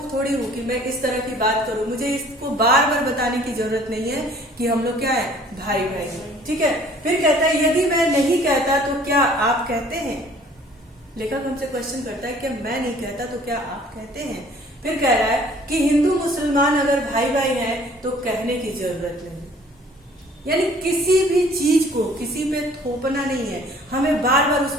थोड़ी हूँ कि मैं इस तरह की बात करूँ। मुझे इसको बार बार बताने की जरूरत नहीं है कि हम लोग क्या है, भाई भाई। ठीक है। फिर कहता है यदि मैं नहीं कहता तो क्या आप कहते हैं? लेखक हमसे क्वेश्चन करता है कि मैं नहीं कहता तो क्या आप कहते हैं? फिर कह रहा है कि हिंदू मुसलमान अगर भाई भाई हैं तो कहने की जरूरत नहीं। यानी किसी भी चीज को किसी पे थोपना नहीं है, हमें बार बार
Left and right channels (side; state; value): both; normal; correlation 0.54